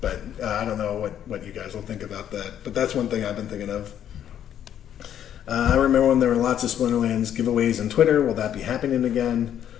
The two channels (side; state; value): right; quieter; 10.1 dB